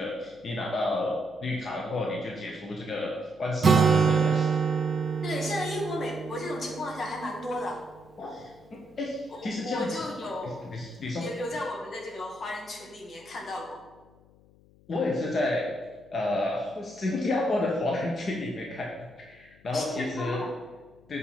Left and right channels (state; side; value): noise; left; hum, 27 dB below the sound